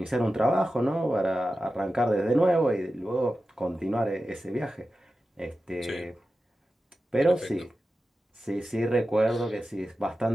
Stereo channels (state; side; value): normal; both; correlation 0.93